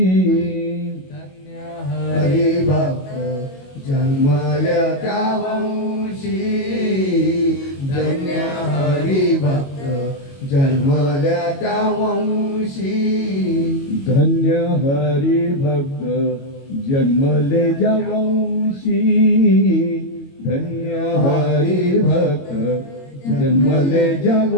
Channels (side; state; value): right; late; 22 ms